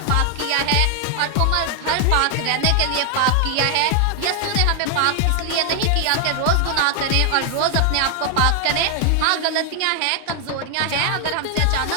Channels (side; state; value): both; different; correlation 0.00